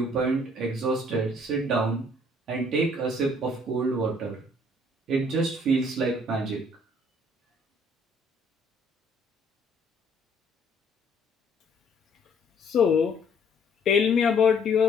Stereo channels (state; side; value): normal; both; correlation 0.61